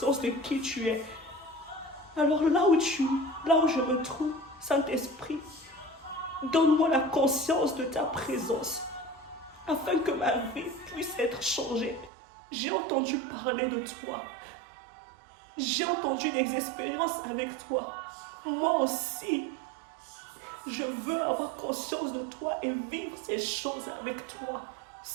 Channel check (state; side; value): drops out; left; at 12.1 s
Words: de qui tu es. Alors là où je me trouve, Saint-Esprit, donne-moi la conscience de ta présence, afin que ma vie puisse être changée. J'ai entendu parler de toi. J'ai entendu des expériences avec toi. Moi aussi, je veux avoir conscience de toi et vivre ces choses avec toi.